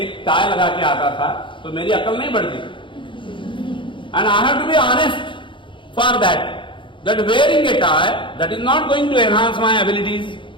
एक टाई लगा के आता था तो मेरी अकल नहीं बढ़ती, and I have to be honest for that wearing a tie that is not going to enhance my abilities.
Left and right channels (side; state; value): right; late; 0.24 ms